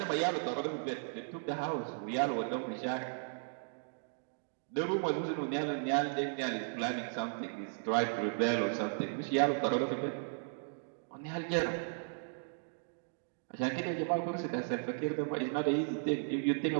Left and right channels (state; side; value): silent; left; digital silence